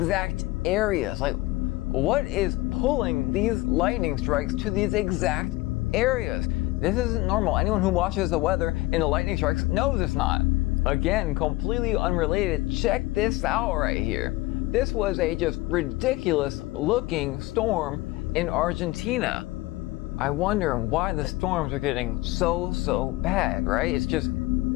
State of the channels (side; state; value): right; quieter; 19.7 dB